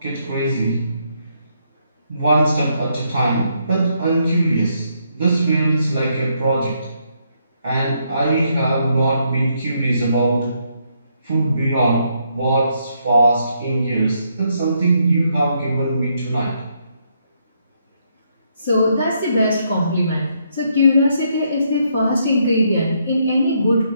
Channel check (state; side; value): inverted; both; correlation -0.75